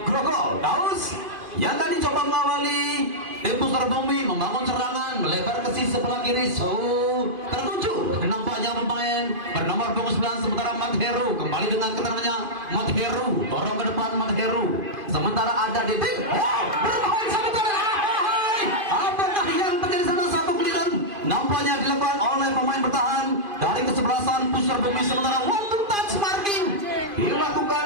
Grogol. Daus yang tadi coba mengawali tim Pusar Bumi membangun serangan melebar ke sisi sebelah kiri. Tertuju nampaknya pemain bernomor punggung 9 sementara Mat Heru kembali dengan keterangannya. Mat Heru dorong ke depan Mat Heru. Sementara ada Didik. Berbahaya sementara. Apakah yang terjadi sana? Satu giliran nampaknya dilakukan oleh pemain bertahan dari kesebelasan Pusar Bumi, sementara one to touch marking dilakukan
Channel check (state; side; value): late; left; 2.5 ms